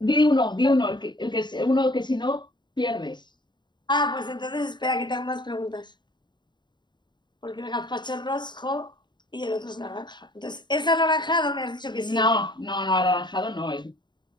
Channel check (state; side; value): late; right; 0.22 ms